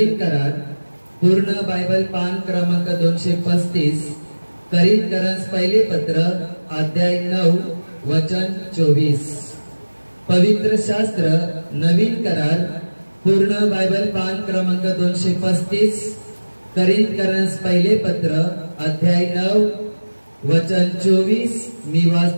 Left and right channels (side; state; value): both; inverted; correlation -1.00